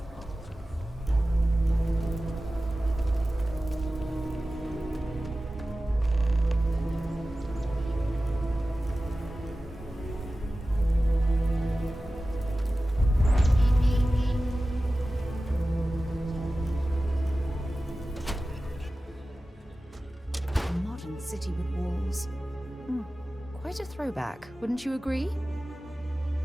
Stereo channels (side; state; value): both; normal; correlation 0.95